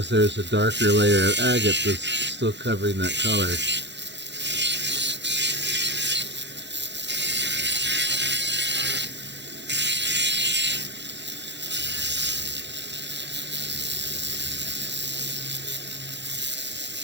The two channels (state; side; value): late; left; 0.51 ms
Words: there's a darker layer of agate that's still covering that color.